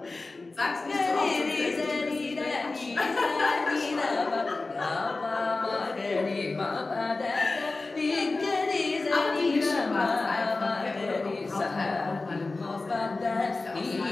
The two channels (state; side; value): quieter; right; 3.4 dB